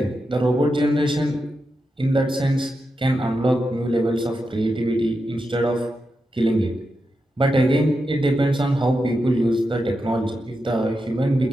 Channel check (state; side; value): normal; both; correlation 0.88